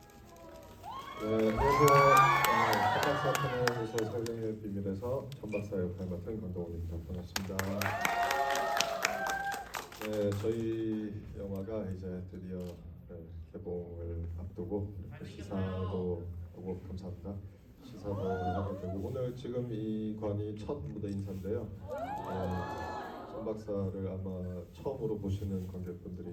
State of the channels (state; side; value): identical; both; correlation 1.00